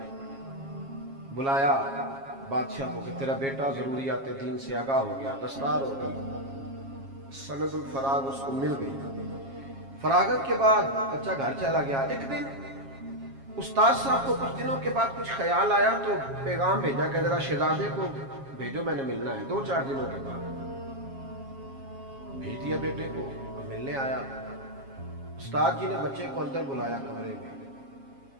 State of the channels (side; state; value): left; late; 7.3 ms